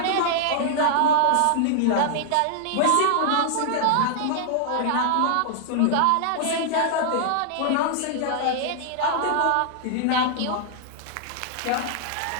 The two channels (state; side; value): different; both; correlation -0.01